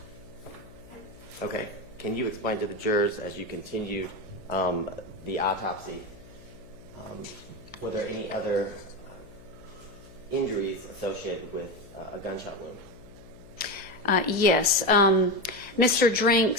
Okay. Can you explain to the jurors, as you continued the autopsy, were there any other injuries associated with a gunshot wound? Yes. Mr.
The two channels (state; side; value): noise; left; hum, 20 dB below the sound